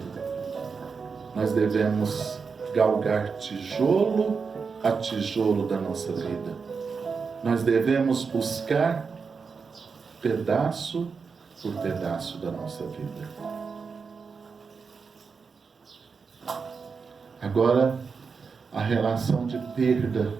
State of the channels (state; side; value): quieter; left; 5.3 dB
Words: Nós devemos galgar tijolo a tijolo da nossa vida. Nós devemos buscar pedaço por pedaço da nossa vida. Agora, a relação de